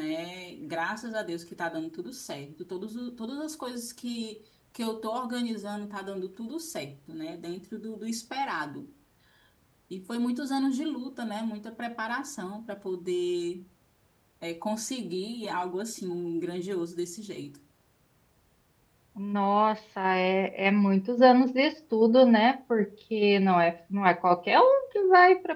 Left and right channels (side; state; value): both; identical; correlation 1.00